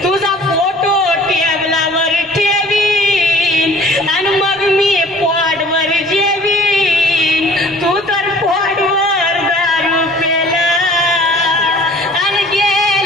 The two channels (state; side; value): normal; both; correlation 0.50